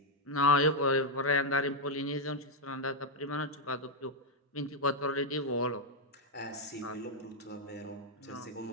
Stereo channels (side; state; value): both; normal; correlation -0.01